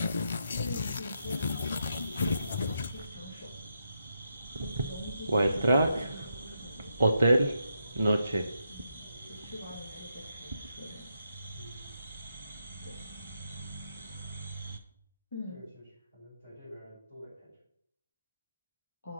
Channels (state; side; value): inverted; both; correlation -0.81